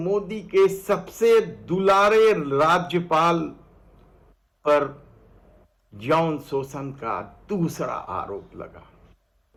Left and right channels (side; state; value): both; identical; correlation 1.00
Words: के सबसे दुलारे राज्यपाल पर यौन शोषण का दूसरा आरोप लगा।